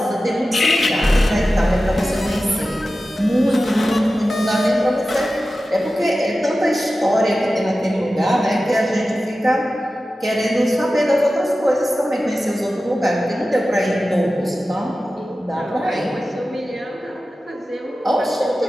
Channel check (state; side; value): normal; both; correlation 0.94